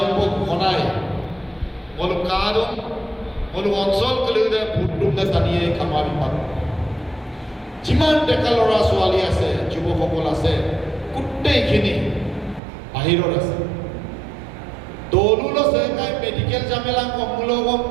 ঘনাই মলু কাদম মলু অঞ্চল কলিদে ভোটটোতে টানিয়ে কামাবি পাব যিমান ডেকা ল'ৰা ছোৱালী আছে যুৱকসকল আছে গোটেইখিনি বাহিৰত আছে দৌলুল আছে কাই মেডিকেল জামেলা কমুলগ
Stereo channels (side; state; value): left; drops out; at 12.6 s